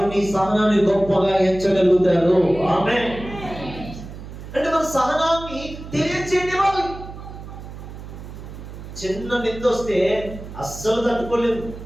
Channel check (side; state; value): right; noise; hum, 12 dB below the sound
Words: నీ సహనాన్ని గొప్పగా ఎంచగలుగుతారు. ఆమేన్. అంటే మన సహనాన్ని తెలియచేయనివ్వాలి. చిన్న నింద వస్తే అస్సలు తట్టుకోలేదు,